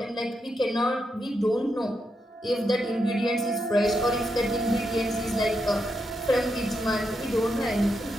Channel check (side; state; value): both; normal; correlation 0.83